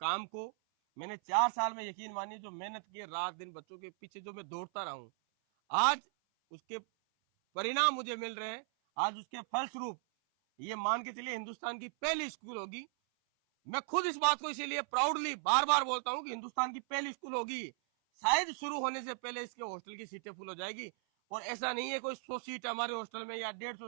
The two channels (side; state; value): left; silent; 53 dB below the other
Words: को। मैंने 4 साल में, यकीन मानिए, जो मेहनत की है रात दिन बच्चों के पीछे, जो मैं दौड़ता रहा हूं, आज उसके परिणाम मुझे मिल रहे हैं। आज उसके फलस्वरूप ये मान के चलिए हिंदुस्तान की पहली स्कूल होगी। मैं खुद इस बात को इसीलिए प्राउडली बार बार बोलता हूं कि हिंदुस्तान की पहली स्कूल होगी। शायद शुरू होने से पहले इसके हॉस्टल की सीटें फुल हो जाएगी। और ऐसा नहीं है कोई 100 सीट है हमारे हॉस्टल में या